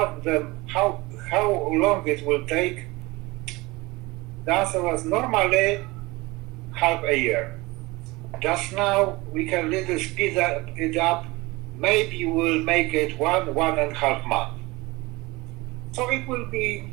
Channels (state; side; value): quieter; left; 22.4 dB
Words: them how long it will take, the answer was normally half a year. Just now we can little speed it up. Maybe we'll make it 1.5 months. So it will be